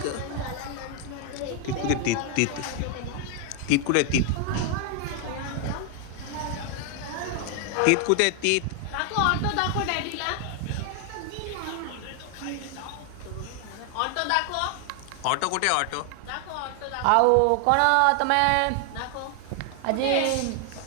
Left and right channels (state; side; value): different; both; correlation 0.00